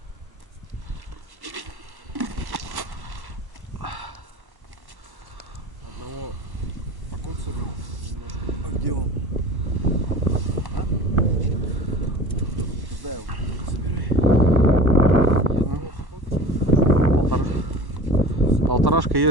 Одного покоцали немножко. А где он? А? Когда его собирай? Полторашка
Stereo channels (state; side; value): late; left; 1.1 ms